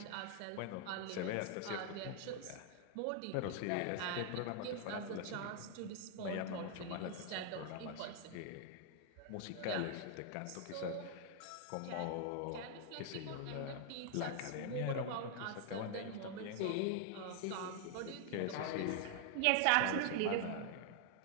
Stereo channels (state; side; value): different; both; correlation 0.00